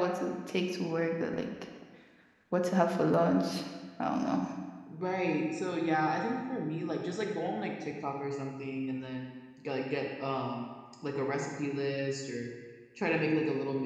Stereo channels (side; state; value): both; identical; correlation 1.00